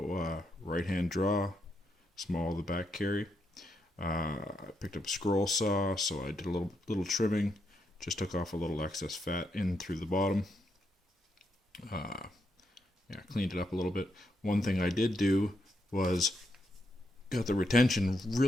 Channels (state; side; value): normal; both; correlation 0.80